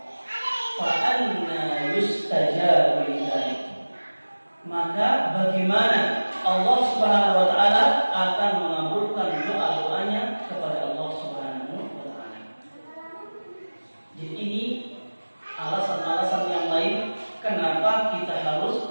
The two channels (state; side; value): inverted; both; correlation -1.00